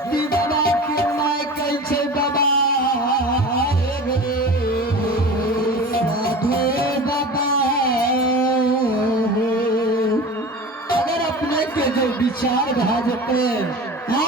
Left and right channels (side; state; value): both; normal; correlation 0.35